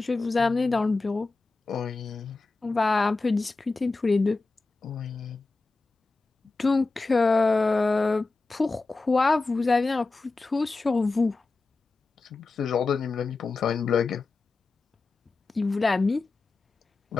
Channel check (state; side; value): quieter; right; 3.7 dB